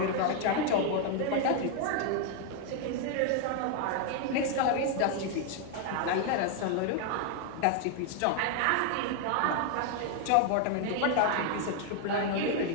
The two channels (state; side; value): different; both; correlation 0.00